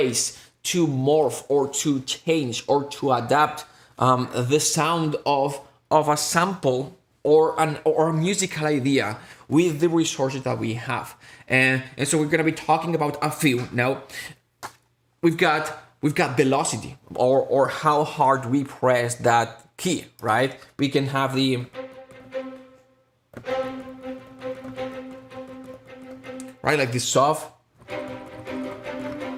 to morph or to change or to adapt the sound of a sample or a musical idea with the resources that we have. And so we're gonna be talking about a few. Now, we've got velocity, or how hard we press that key, right? We can have the right, like this soft.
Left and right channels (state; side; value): identical; both; correlation 1.00